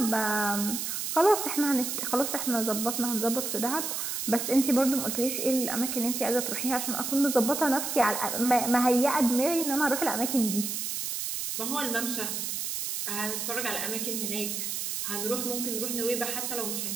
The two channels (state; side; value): noise; right; hiss, 3 dB below the sound